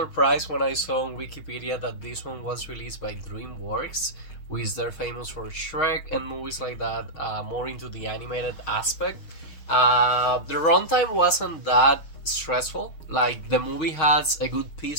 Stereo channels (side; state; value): right; late; 6.3 ms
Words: when I saw on Wikipedia that this one was released by DreamWorks, which they're famous for Shrek and movies like that, more into the animated aspect. The runtime wasn't that stressful. Like, the movie has a good